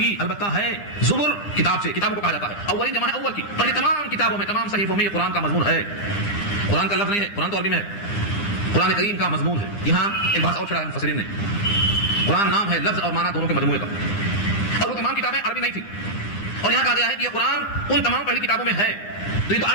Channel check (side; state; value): right; late; 9.9 ms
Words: البتہ ہے، زبر کتاب سے، کتابوں کو کہا جاتا ہے، اولین جمع ہے اول کی، پہلے تمام کتابوں میں، تمام صحیفوں میں یہ قرآن کا مضمون ہے، قرآن کا لفظ نہیں ہے، قرآن تو عربی میں ہے، قرآن کریم کا مضمون ہے۔ یہاں ایک بات اور چھڑا ہے مفسرین نے، قرآن نام ہے لفظ اور معنی دونوں کے مجموعے کا، اور وہ تمام کتابیں عربی نہیں تھی، اور یہاں کہا گیا ہے کہ یہ قرآن ان تمام پہلی کتابوں میں ہے، تو یہ تو